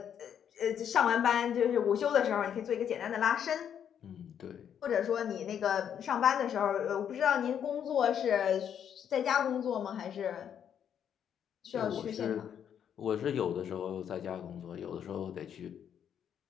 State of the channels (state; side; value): quieter; right; 8.8 dB